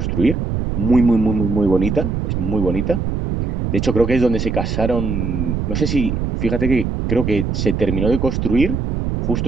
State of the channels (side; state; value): right; noise; rumble, 2 dB below the sound